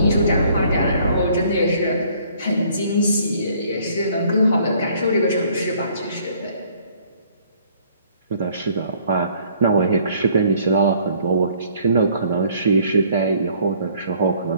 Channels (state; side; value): inverted; both; correlation -0.60